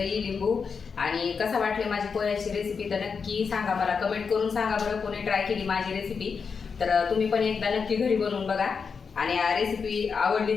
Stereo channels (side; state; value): right; quieter; 5.7 dB